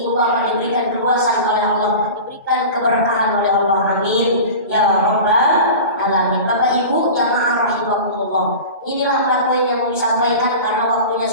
ibu bapak diberikan keluasan oleh Allah, diberikan keberkahan oleh Allah. Amin ya Rabbal Alamin. Bapak Ibu jamaah rahimakumullah, inilah 4 poin yang disampaikan karena waktunya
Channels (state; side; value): inverted; both; correlation -0.33